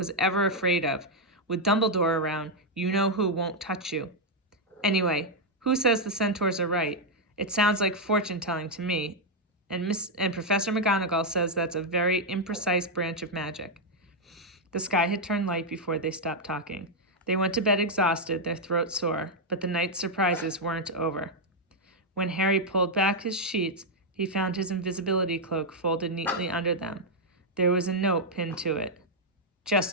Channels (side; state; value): both; normal; correlation -0.02